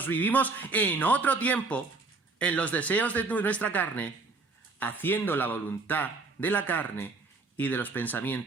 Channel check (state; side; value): quieter; left; 3.9 dB